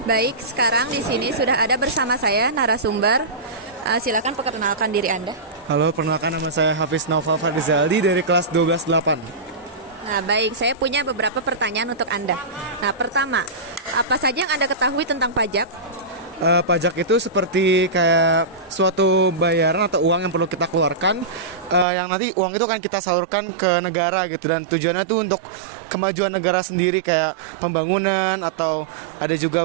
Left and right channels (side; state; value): left; drops out; at 21.9 s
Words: Baik, sekarang di sini sudah ada bersama saya narasumber. Silakan perkenalkan diri Anda. Halo, perkenalkan nama saya Hafiz Naufal Fardizaldi dari kelas 12-8. Nah, baik, saya punya beberapa pertanyaan untuk Anda. Nah, pertama, apa saja yang Anda ketahui tentang pajak? Pajak itu seperti kayak suatu bayaran atau uang yang perlu kita keluarkan, yang nanti uang itu akan kita salurkan ke negara gitu, dan tujuannya tuh untuk kemajuan negara sendiri, kayak pembangunan atau ada juga